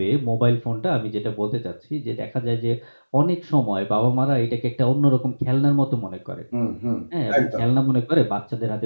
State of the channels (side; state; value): both; inverted; correlation -1.00